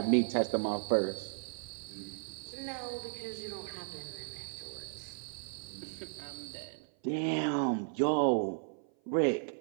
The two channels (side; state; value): left; silent; 54 dB below the other